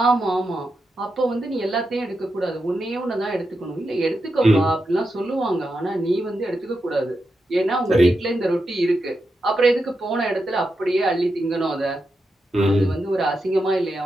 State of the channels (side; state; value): both; normal; correlation 0.87